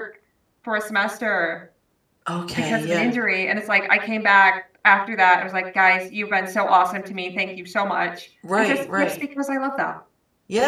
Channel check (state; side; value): identical; both; correlation 1.00